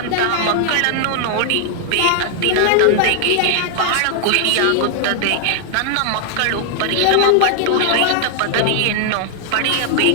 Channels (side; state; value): both; different; correlation -0.01